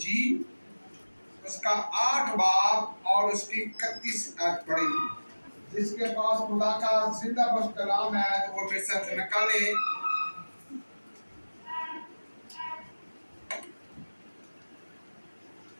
उसका 8 बाब और उसकी 31 आयत पढ़ेंगे। जिसके पास खुदा का जिंदा बस कलाम है तो वो मेरे साथ निकाले।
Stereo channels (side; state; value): both; inverted; correlation -1.00